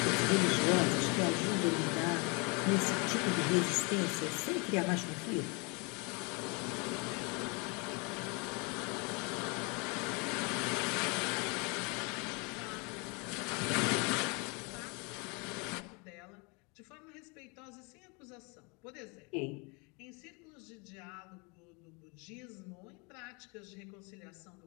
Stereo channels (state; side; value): quieter; right; 31.0 dB